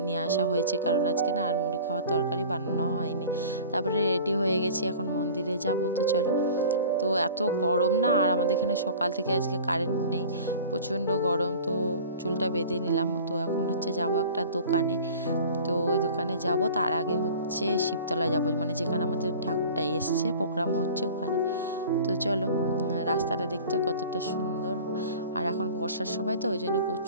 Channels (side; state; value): both; inverted; correlation -0.42